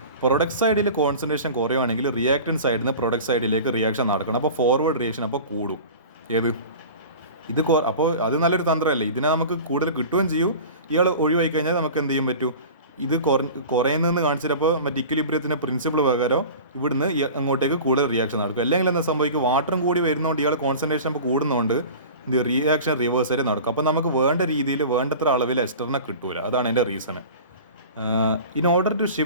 പ്രൊഡക്റ്റ് സൈഡിൽ കോൺസെൻട്രേഷൻ കുറയുവാണെങ്കിൽ റിയാക്റ്റൻറ്റ് സൈഡിൽ നിന്ന് പ്രൊഡക്റ്റ് സൈഡിലേക്ക് റിയാക്ഷൻ നടക്കണം. അപ്പോൾ ഫോർവേഡ് റിയാക്ഷൻ അപ്പോൾ കൂടും. അപ്പോൾ അത് നല്ലൊരു തന്ത്രമല്ലേ, ഇതിനെ നമുക്ക് കൂടുതൽ കിട്ടുകയും ചെയ്യും. ഇയാൾ ഒഴിവായി കഴിഞ്ഞാൽ നമുക്ക് എന്ത് ചെയ്യാൻ പറ്റും, ഇത് കുറയുന്നതെന്ന് കാണിച്ചിട്ടപ്പോൾ മറ്റേ ഇക്വിലിബ്രിയത്തിൻ്റെ പ്രിൻസിപ്പിൾ പ്രകാരം ഇവിടുന്ന് അങ്ങോട്ടേക്ക് കൂടുതൽ റിയാക്ഷൻ നടക്കും. അല്ലെങ്കിൽ എന്താ സംഭവിക്കും, വാട്ടറും കൂടി വരുന്നതുകൊണ്ട് ഇയാൾ കോൺസെൻട്രേഷൻ അപ്പോൾ കൂടുന്നതുകൊണ്ട് ഇത് റിയാക്ഷൻ റിവേഴ്സ് ആയിട്ട് നടക്കും. അപ്പോൾ നമുക്ക് വേണ്ട രീതിയിൽ വേണ്ടത്ര അളവിൽ എസ്റ്ററിനെ കിട്ടൂല. അതാണ് എൻ്റെ reason. In order to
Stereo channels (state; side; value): inverted; both; correlation -0.38